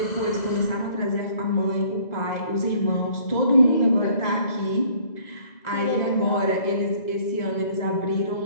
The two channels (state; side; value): late; right; 2.0 ms